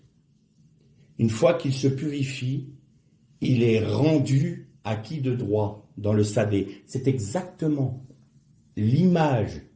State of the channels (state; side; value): identical; both; correlation 1.00